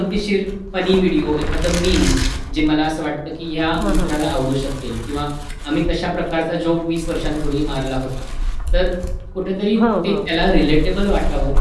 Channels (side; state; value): both; identical; correlation 1.00